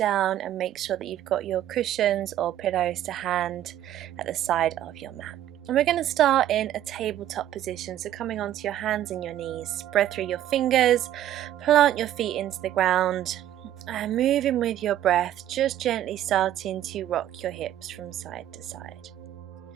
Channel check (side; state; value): left; quieter; 12.1 dB